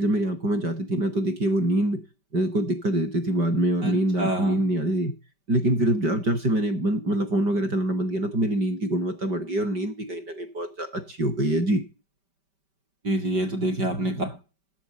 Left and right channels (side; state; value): left; late; 5.1 ms